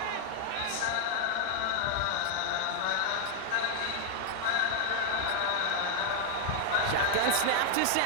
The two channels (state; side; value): different; both; correlation 0.00